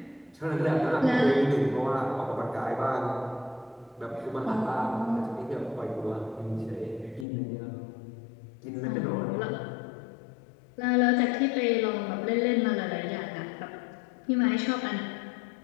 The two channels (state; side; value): drops out; right; at 7.2 s